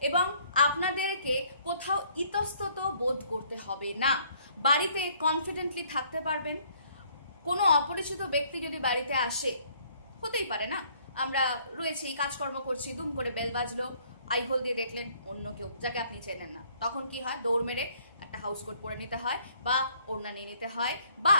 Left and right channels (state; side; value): inverted; both; correlation -0.62